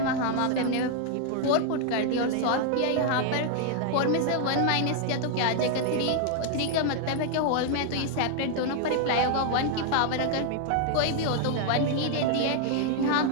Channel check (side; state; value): both; different; correlation 0.00